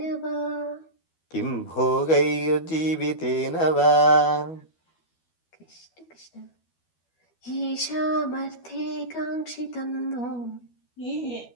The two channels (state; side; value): late; right; 12 ms